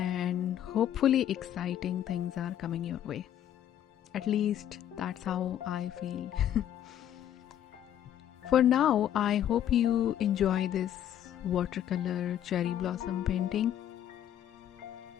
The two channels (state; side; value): quieter; right; 10.8 dB